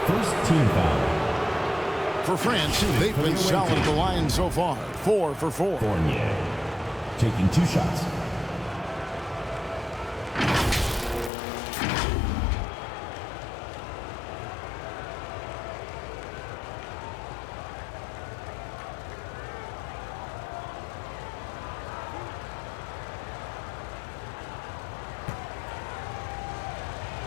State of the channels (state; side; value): drops out; right; at 11.3 s